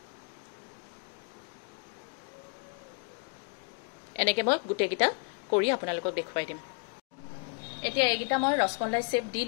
এনেকৈ মই গোটেইকেইটা কৰি আপোনালোকক দেখুৱাই দিম। এতিয়া এইকেইটা মই ৰসমলাই শ্বেপ দি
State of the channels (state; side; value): quieter; right; 34.7 dB